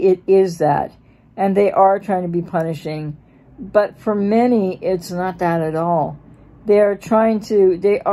it is that, and they are trying to be punishing, but for many, it's not that at all. They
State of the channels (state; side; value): identical; both; correlation 1.00